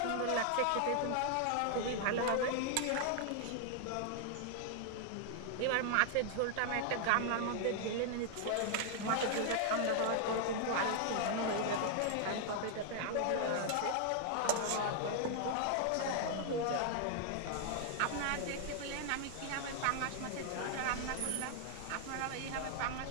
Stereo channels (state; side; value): different; both; correlation 0.00